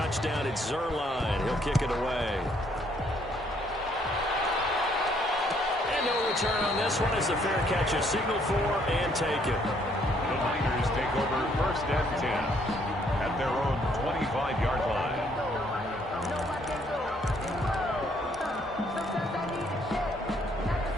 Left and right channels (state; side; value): normal; both; correlation 0.67